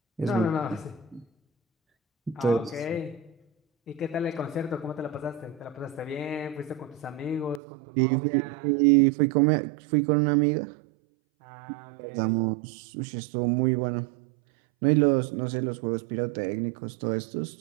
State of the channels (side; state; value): left; drops out; at 7.6 s